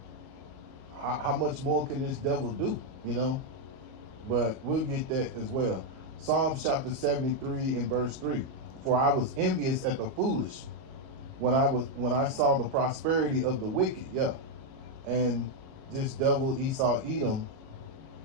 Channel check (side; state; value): left; late; 38 ms